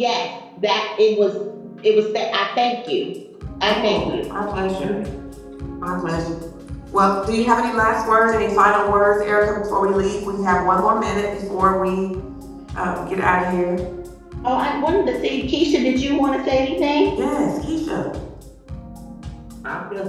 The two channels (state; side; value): identical; both; correlation 1.00